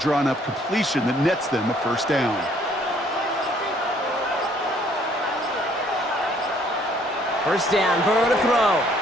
completion that nets them a 1st down. First down, Burrow to throw.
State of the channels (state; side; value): normal; both; correlation 0.62